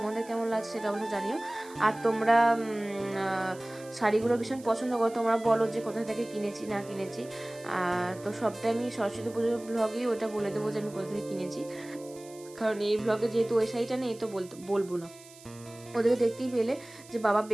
কেমন লাগছে সেটা অবশ্যই জানিও। আর তোমরা শাড়িগুলো ভীষণ পছন্দ করো, তোমরা বলো যে কোথা থেকে কিনেছি না কিনেছি। তো সবটাই আমি সরস্বতী পুজোর ব্লগেই ওটা বলে দেবো যে আমি কোথা থেকে কিনেছি। কারণ এই ব্লগে যেহেতু ওই শাড়িটা নেই তো বলবো না। ওদেরকে দেখতেই পেলে যে বাবা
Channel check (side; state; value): right; noise; hiss, 21 dB below the sound